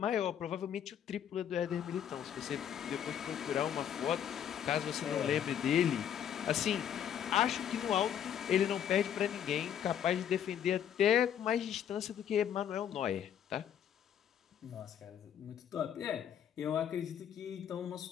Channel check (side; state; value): right; quieter; 9.4 dB